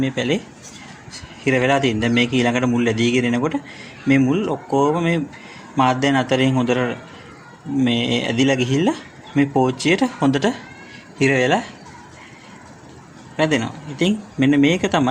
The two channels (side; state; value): both; identical; correlation 1.00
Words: මේ පැලේ හිර වෙලා තියෙන. දැන් මේක ඊළඟට මුල් ඇදීගෙන එනකොට මේ මුල් ඔක්කොම මේ මාධ්‍යයන් අතරින් හොඳට මේ ඇදිලා ගිහිල්ලා මේ පෝච්චියට හොඳට හිර වෙලා රැඳෙනවා. ඉතින් මෙන්න මේක